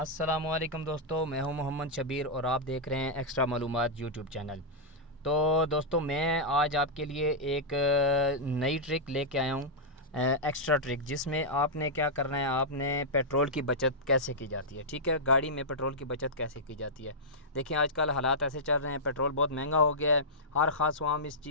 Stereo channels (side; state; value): both; normal; correlation -0.09